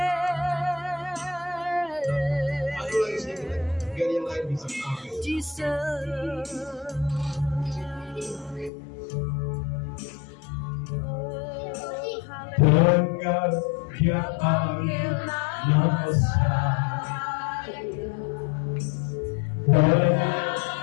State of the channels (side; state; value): right; drops out; at 8.7 s